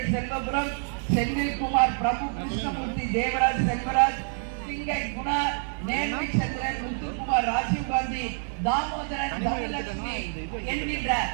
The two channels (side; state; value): left; silent; 58 dB below the other